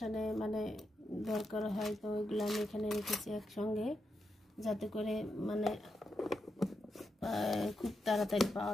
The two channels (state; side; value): normal; both; correlation 0.85